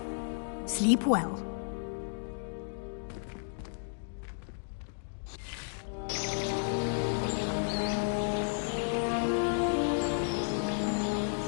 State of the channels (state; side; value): silent; right; digital silence